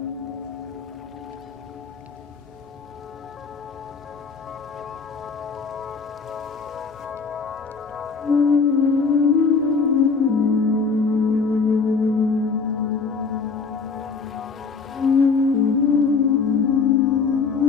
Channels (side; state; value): right; quieter; 4.9 dB